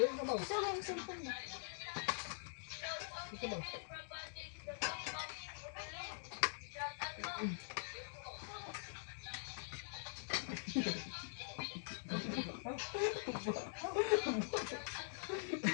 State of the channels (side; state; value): right; silent; digital silence